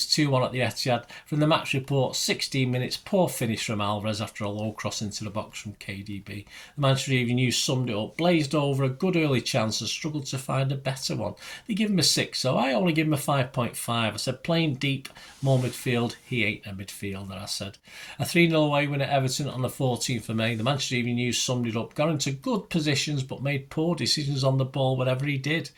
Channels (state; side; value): identical; both; correlation 1.00